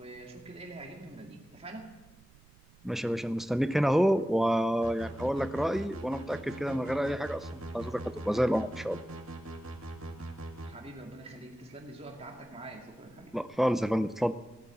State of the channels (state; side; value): noise; right; rumble, 27 dB below the sound